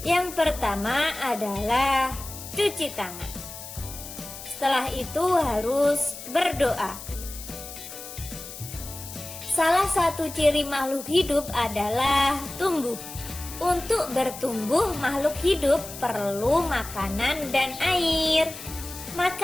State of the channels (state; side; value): noise; left; hiss, 12 dB below the sound